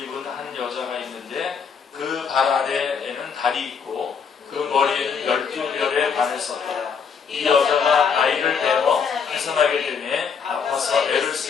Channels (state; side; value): quieter; right; 6.3 dB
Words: 한 여자가 있는데 그 발 아래에는 달이 있고 그 머리에는 12별의 반을 썼더라. 이 여자가 아이를 베어 해산하게 되매 아파서 애를